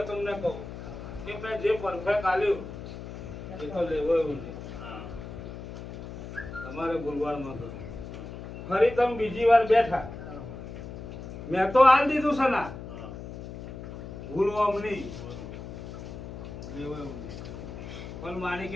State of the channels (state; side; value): noise; left; hum, 10 dB below the sound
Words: તમને કહું કે મેં જે પરફેક્ટ આલ્યું એ તો લેવો એવું નહીં. તમારે ભૂલવાડમાં તો ફરી તમે બીજી વાર બેઠા, મેં તો આલ દીધું છે ના, ભૂલવા નહીં, લેવો એવું નહીં. પણ મારી